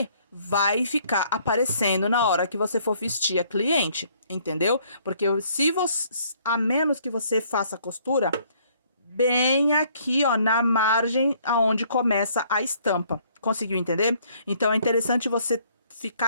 vai ficar aparecendo na hora que você for vestir a cliente, entendeu? Porque se você, a menos que você faça a costura bem aqui, ó, na margem aonde começa a estampa. Conseguiu entender? Então é interessante você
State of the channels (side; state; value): both; inverted; correlation -0.63